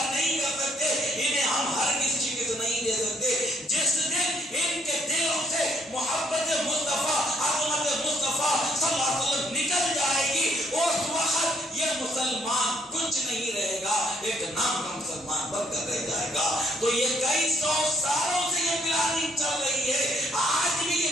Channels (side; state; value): both; normal; correlation 0.69